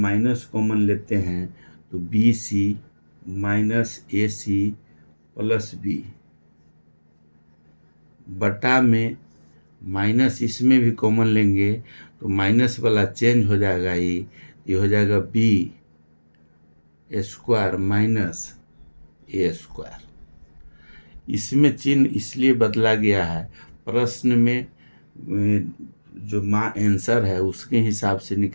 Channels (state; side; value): inverted; both; correlation -1.00